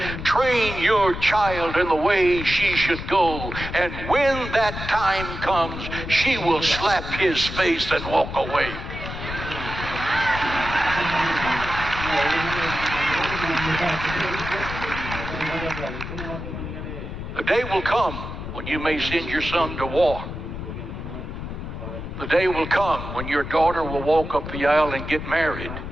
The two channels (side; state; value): left; noise; rumble, 8 dB below the sound